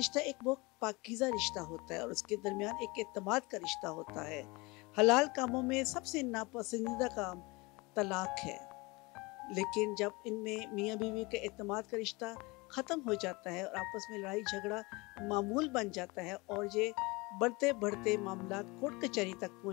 एक बहुत पाकीज़ा रिश्ता होता है और उसके दरमियान एक एतमाद का रिश्ता होता है। हलाल कामों में सबसे नापसंदीदा काम तलाक है, लेकिन जब इनमें मियाँ बीवी के एतमाद का रिश्ता ख़त्म हो जाता है और आपस में लड़ाई झगड़ा मामूल बन जाता है और ये बढ़ते बढ़ते मामला कोर्ट कचहरी तक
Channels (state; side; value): quieter; right; 25.0 dB